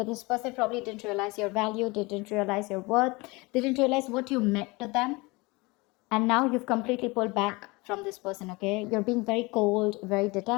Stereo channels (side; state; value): right; quieter; 24.7 dB